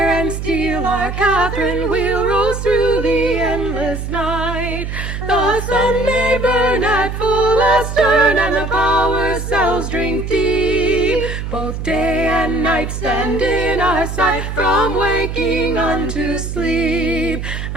and steel, our Catherine wheel rolls through the endless night. The sun may burn at full astern, and the power cells drink deep. Both day and night stand in our sight, from waking unto sleep.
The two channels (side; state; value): right; noise; hum, 5 dB below the sound